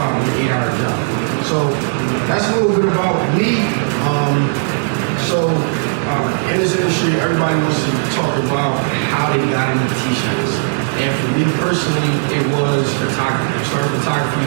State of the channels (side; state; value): left; silent; digital silence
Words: 8-hour job. So that's a little bit about me. In this industry, everybody wants to talk about how they got into t-shirts. And for me personally, it was photography. I started photography